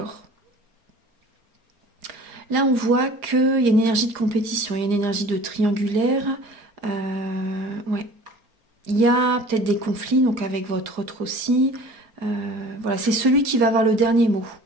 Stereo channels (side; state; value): left; late; 4.8 ms